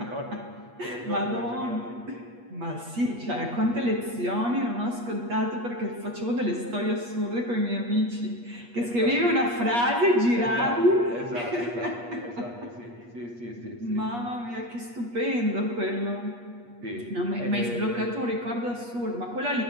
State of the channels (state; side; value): late; left; 8.4 ms